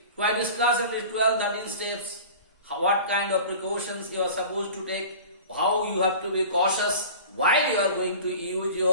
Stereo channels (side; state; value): both; inverted; correlation -0.39